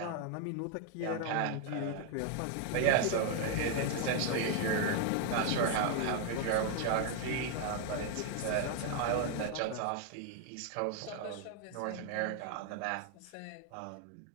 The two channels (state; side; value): different; both; correlation 0.01